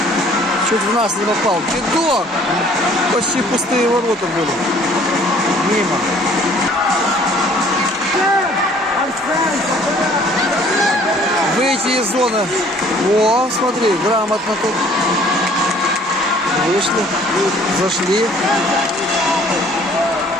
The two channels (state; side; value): normal; both; correlation 0.56